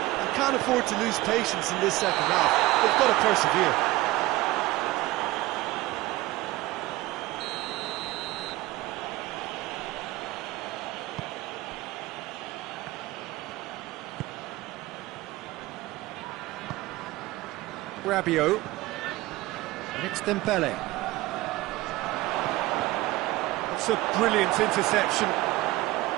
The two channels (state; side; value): quieter; left; 18.4 dB